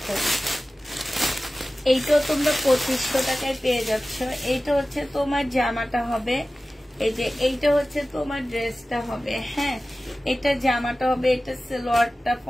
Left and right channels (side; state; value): both; normal; correlation 0.96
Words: এইটাও তোমরা 2500 টাকায় পেয়ে যাচ্ছ। এইটা হচ্ছে তোমার জামাটা হবে, এই যে এইটা হচ্ছে তোমার ড্রেসটা হবে। হ্যাঁ, এটা জামাটা হবে, এটা সালোয়ারটা